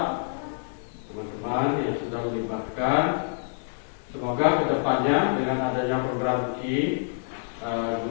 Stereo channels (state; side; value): silent; right; 60 dB below the other